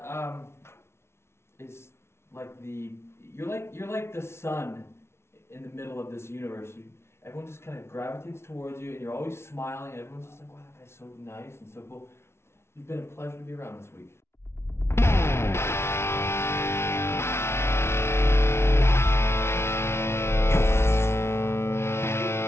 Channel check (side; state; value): right; late; 0.12 ms